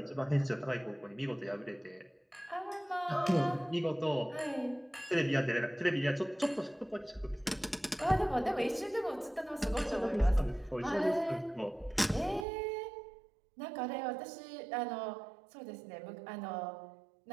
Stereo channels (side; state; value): left; drops out; at 12.5 s